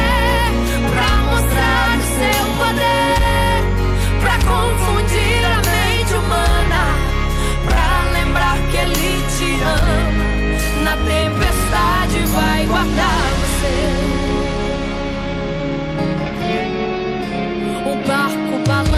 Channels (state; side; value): identical; both; correlation 1.00